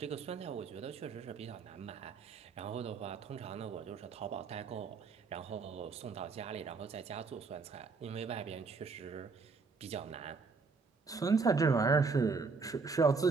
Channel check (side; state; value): left; quieter; 4.6 dB